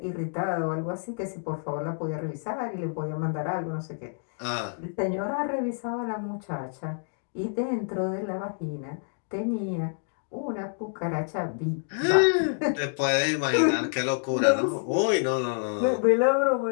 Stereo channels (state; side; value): silent; right; digital silence